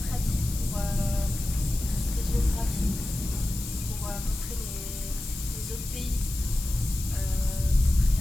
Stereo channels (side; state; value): left; noise; hiss, 10 dB below the sound